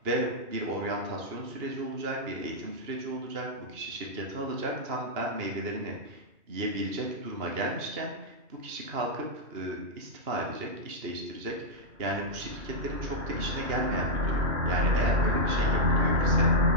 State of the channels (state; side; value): late; left; 2.8 ms